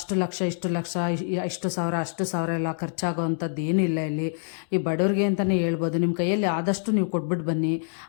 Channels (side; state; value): right; silent; digital silence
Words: ಲಕ್ಷ ಇಷ್ಟು ಸಾವಿರ ಎಲ್ಲ ಖರ್ಚಾಗೋ ಅಂಥದ್ದು ಏನೂ ಇಲ್ಲ. ಇಲ್ಲಿ ಈ ಬಡವ್ರಿಗೆ ಅಂತಲೇ ಹೇಳ್ಬೋದು. ನಿಮ್ಮ ಕೈಯಲ್ಲಿ ಆದಷ್ಟು ನೀವು ಕೊಟ್ಬಿಟ್ಟು ಬನ್ನಿ.